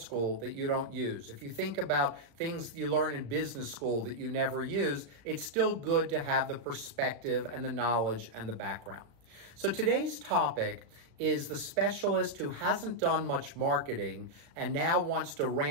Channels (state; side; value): late; left; 36 ms